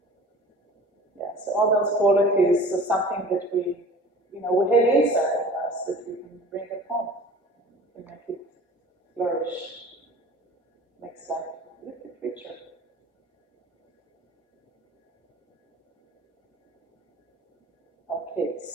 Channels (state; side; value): normal; both; correlation 0.43